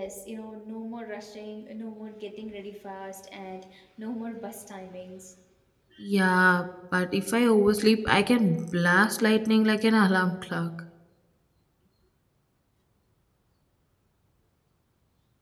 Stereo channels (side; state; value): both; identical; correlation 1.00